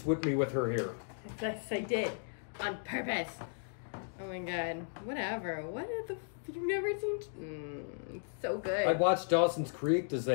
whipped me with her hair. Yes, I did. On purpose. Oh my god. Whatever. What the you've never seen? It's so good. I watched Dawson's Creek. Does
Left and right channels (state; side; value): silent; right; digital silence